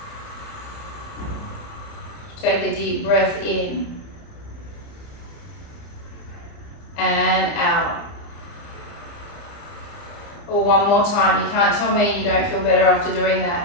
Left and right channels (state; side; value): late; right; 30 ms